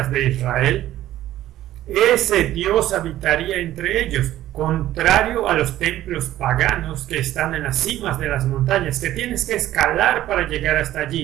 de Israel, ese Dios habitaría entre ellos, contrario a los templos paganos que están en las cimas de las montañas, que tienes que escalar para llegar hasta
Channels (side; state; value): left; quieter; 13.8 dB